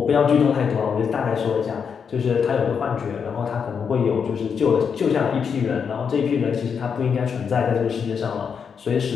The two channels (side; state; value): right; quieter; 6.6 dB